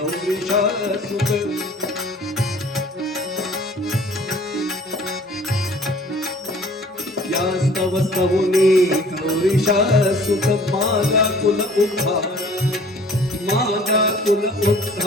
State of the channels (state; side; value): normal; both; correlation 0.51